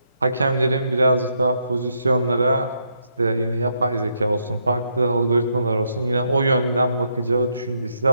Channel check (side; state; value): both; inverted; correlation -0.77